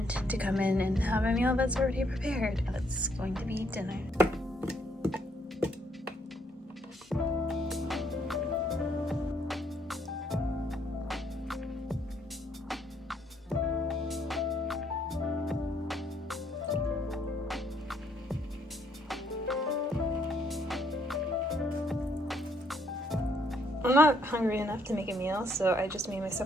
to come in and have a meal that's already prepared. That's going to be dinner. I'm not hungry enough to make a meal, so I just made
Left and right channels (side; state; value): both; normal; correlation 0.70